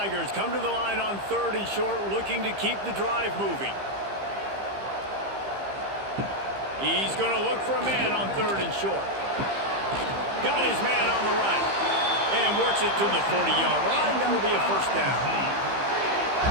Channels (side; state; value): left; late; 15 ms